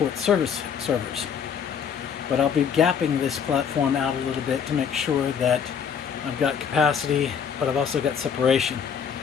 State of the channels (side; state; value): right; quieter; 7.3 dB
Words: service servers. But I'll be gapping this platform out a little bit to make sure that I've got capacity, but I've also got separation.